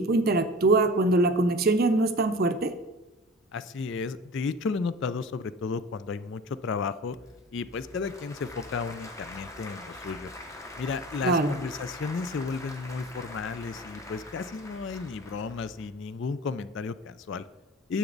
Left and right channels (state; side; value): normal; both; correlation 0.38